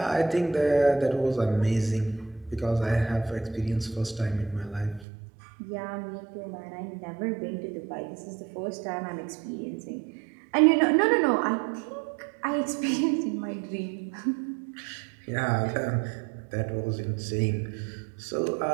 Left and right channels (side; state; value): left; drops out; at 5.1 s